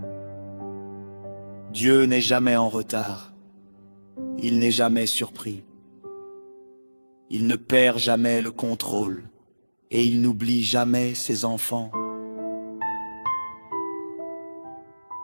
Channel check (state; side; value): inverted; both; correlation -1.00